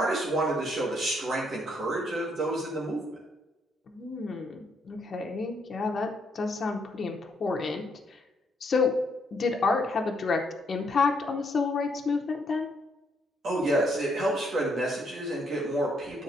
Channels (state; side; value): normal; both; correlation 0.72